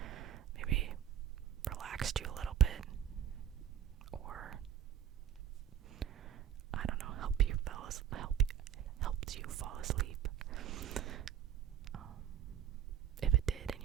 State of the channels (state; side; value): quieter; left; 9.8 dB